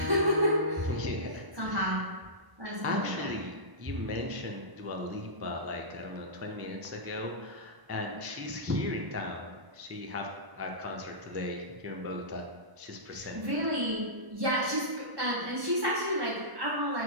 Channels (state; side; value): late; left; 1.0 ms